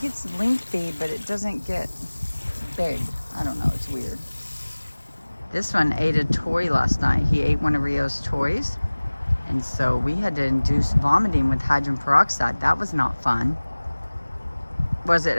gets lengthy, but it doesn't get big. I don't know, it's weird. This one ate a toy last night. He ate one of Rio's toys, and so we had to induce vomiting with hydrogen peroxide. That was not fun. Was it,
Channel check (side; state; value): both; inverted; correlation -1.00